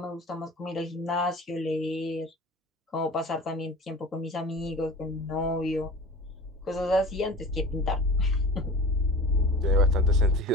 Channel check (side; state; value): both; normal; correlation 0.38